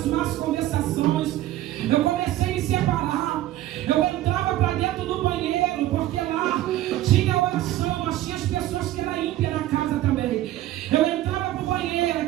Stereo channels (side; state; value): left; quieter; 14.4 dB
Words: más conversações. Eu comecei a me separar. Eu entrava para dentro do banheiro, porque lá tinha oração, mas tinha as pessoas que eram ímpias na casa também. Eu entrava para o banheiro,